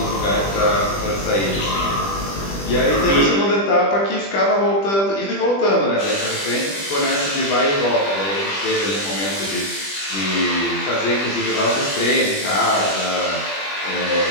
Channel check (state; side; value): late; right; 20 ms